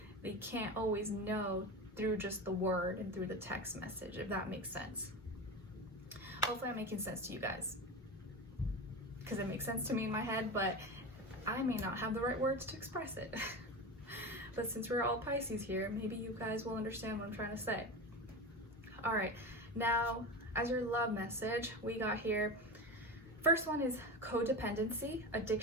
that you can't always know through just the word and through the text message, if that makes sense. Hopefully I'm making sense to you guys, because it makes sense to me in my head, but I may not have the right words to express it. But since we're all Pisces here, maybe you guys will understand what I'm trying to say. All right, now as your love message, we got here, first one is codependency.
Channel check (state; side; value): normal; both; correlation 0.25